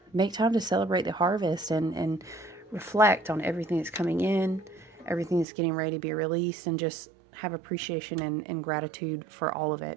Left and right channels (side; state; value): left; drops out; at 5.5 s